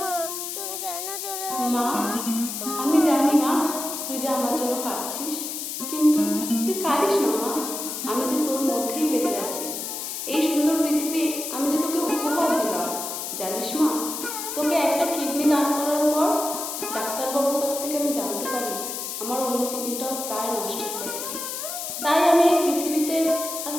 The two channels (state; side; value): noise; left; hiss, 5 dB below the sound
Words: মা, তুমি কেন চলে গেলে? মা, আমি জানি মা তুই যে আমার জন্য কাঁদছিস, কিন্তু তুই কাঁদিস না মা। আমি যে তোর মধ্যেই বেঁচে আছি। এই সুন্দর পৃথিবী আমি যে তোকে উপহার দিলাম, জানিস মা, তোকে একটা কিডনি দান করার পর ডাক্তারবাবুর কাছ থেকে আমি জানতে পারি আমার অন্য কিডনিটাও প্রায় নষ্ট হয়ে থাকে। তাই আমি এই পৃথিবীতে আর